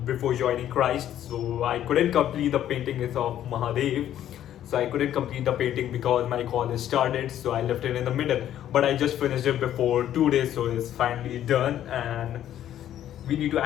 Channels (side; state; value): right; quieter; 11.4 dB